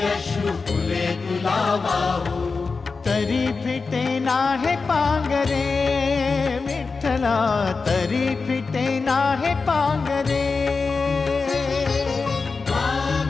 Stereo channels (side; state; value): right; quieter; 4.4 dB